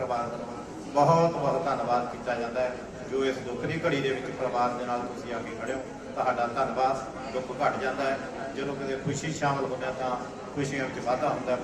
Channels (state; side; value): identical; both; correlation 1.00